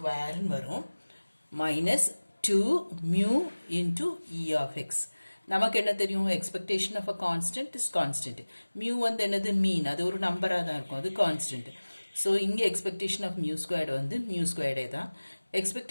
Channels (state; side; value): inverted; both; correlation -1.00